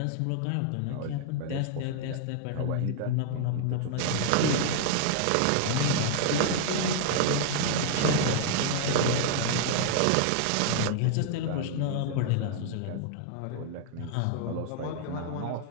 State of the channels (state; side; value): different; both; correlation -0.01